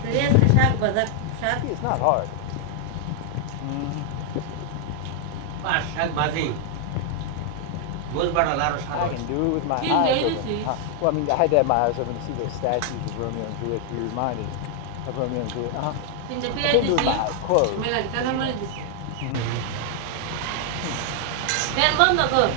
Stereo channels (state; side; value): different; both; correlation 0.00